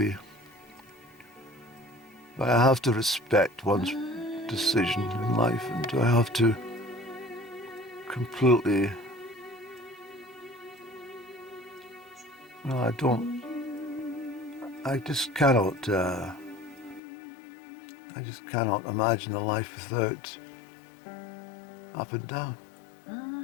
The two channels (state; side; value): drops out; right; at 17.0 s